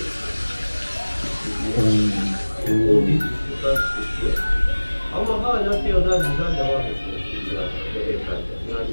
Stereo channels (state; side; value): inverted; both; correlation -1.00